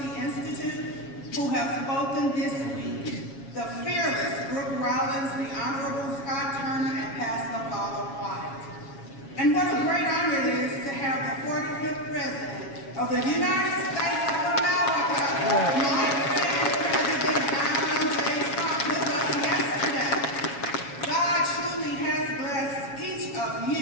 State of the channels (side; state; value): right; late; 7.2 ms